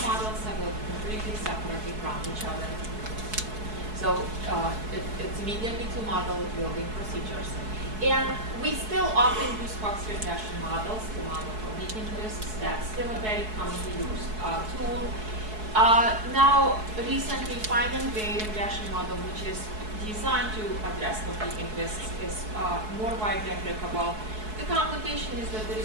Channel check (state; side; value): late; left; 4.7 ms